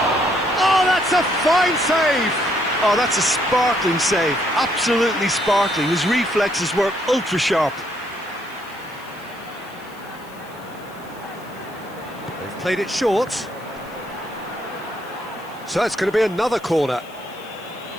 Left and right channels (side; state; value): left; noise; hiss, 25 dB below the sound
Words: Oh, that's a fine save! Oh, that's a sparkling save. Absolutely sparkling. His reflexes were ultra sharp. They've played it short. So it's going to be another corner.